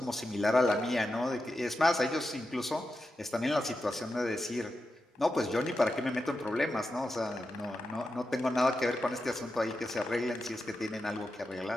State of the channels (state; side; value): normal; both; correlation 0.89